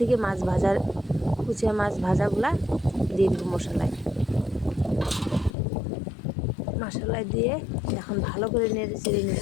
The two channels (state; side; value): drops out; right; at 5.5 s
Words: মাছ ভাজার কুচিয়া মাছ ভাজাগুলা দিয়ে দিব মশলায় দিয়ে এখন ভালো করে নেড়ে ছেড়ে নিব।